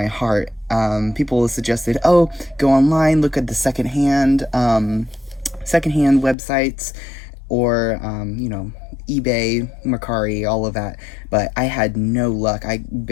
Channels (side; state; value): right; drops out; at 6.4 s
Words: heart. People suggested, oh, go online, look at the secondhand websites, or you know, eBay, Mercari, all of that, but I had no luck. I